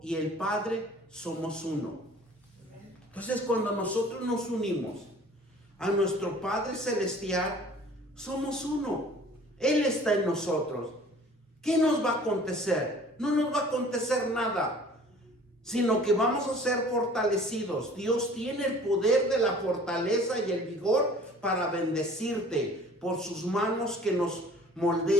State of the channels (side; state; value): both; normal; correlation 0.49